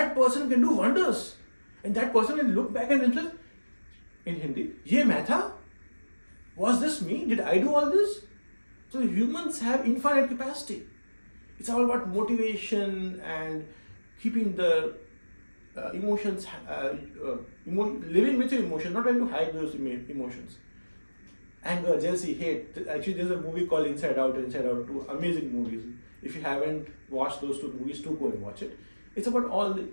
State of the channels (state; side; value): inverted; both; correlation -1.00